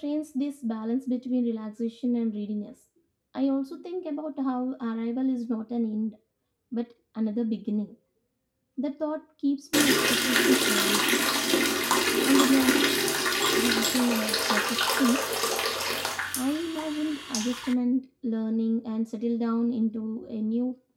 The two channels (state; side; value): identical; both; correlation 1.00